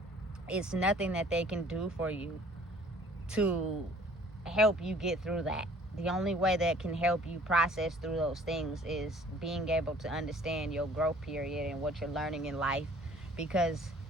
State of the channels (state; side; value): normal; both; correlation 0.54